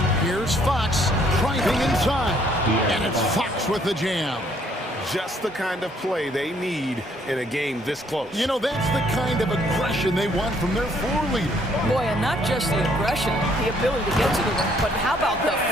Here's Fox driving inside, and it's Fox with the jam. Just the kind of play they need in a game this close. You know, that's the kind of aggression they want from their floor leader. Boy, and not just the aggression, the ability to get to the rim, but how about the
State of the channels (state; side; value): normal; both; correlation 0.65